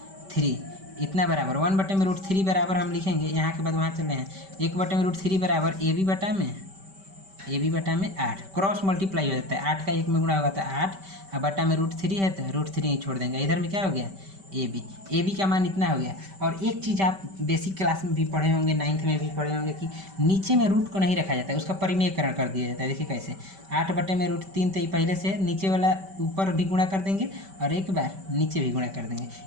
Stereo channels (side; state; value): left; late; 5.2 ms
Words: इतना बराबर 1/√3 बराबर हम लिखेंगे। यहाँ के बाद वहाँ चले हैं 1/√3 बराबर ए बी बटा में 8, क्रॉस मल्टीप्लाई हो जाता है, 8 का 1 में गुणा होगा तो 8, और बटा में √3 है तो √3 ही छोड़ देंगे। इधर में क्या हो गया ए बी का मान इतना हो गया। और एक चीज़ आप बेसिक क्लास में भी पढ़े होंगे, 9th में भी पढ़े होंगे कि नीचे में रूट को नहीं रखा जाता है, उसका परिमेयकरण कर दिया जाता है। देखिए कैसे, 8/√3 तो ये पहले से नीचे वाला ऊपर भी गुणा कर देंगे और एक बार नीचे भी गुणा कर देंगे,